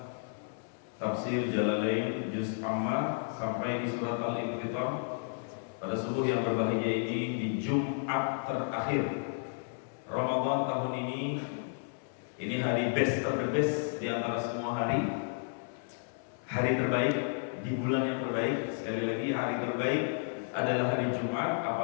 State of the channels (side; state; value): right; silent; 56 dB below the other